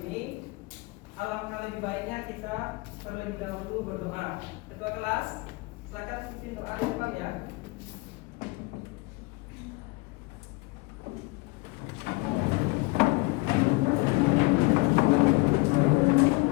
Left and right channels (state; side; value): quieter; right; 25.2 dB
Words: alangkah lebih baiknya kita terlebih dahulu berdoa. Ketua kelas, silakan pimpin doa di depan ya.